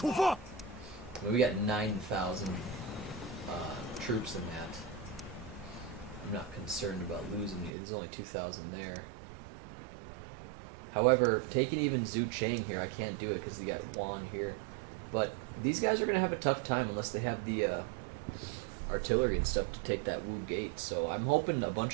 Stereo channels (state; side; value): drops out; left; at 7.7 s